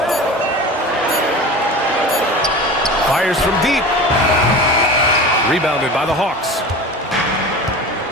Fires from deep. Rebounded by the Hawks.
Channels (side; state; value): both; normal; correlation 0.34